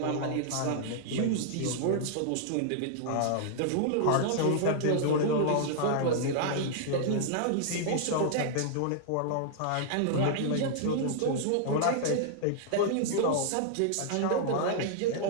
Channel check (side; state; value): both; different; correlation -0.01